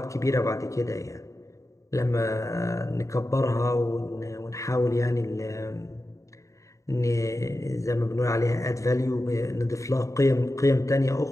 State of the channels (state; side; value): late; right; 0.15 ms